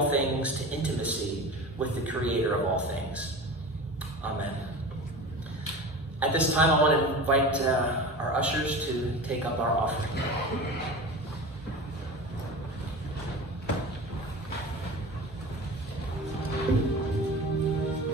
things to intimacy with the Creator of all things. Amen. At this time, I want to invite our ushers to take up our offering.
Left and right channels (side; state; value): both; normal; correlation 0.33